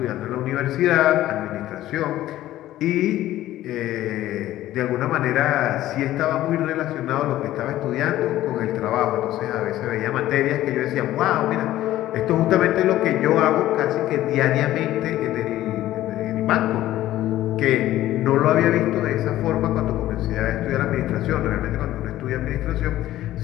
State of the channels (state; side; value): quieter; right; 14.3 dB